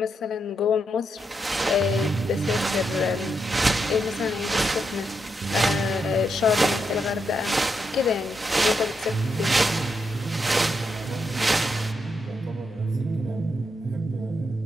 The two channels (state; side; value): normal; both; correlation 0.82